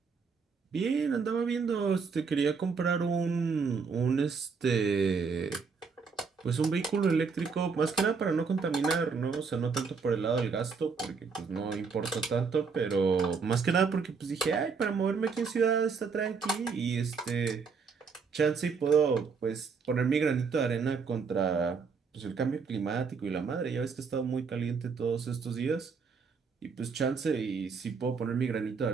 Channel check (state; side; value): quieter; left; 5.3 dB